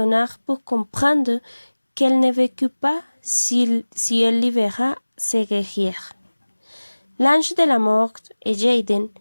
pour comprendre qu'elle ne vécut pas si elle libéra ses guerriers. L'ange de la mort et Jaden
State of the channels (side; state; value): both; inverted; correlation -1.00